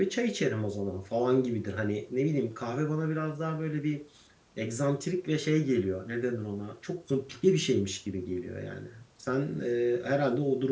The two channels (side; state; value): both; identical; correlation 1.00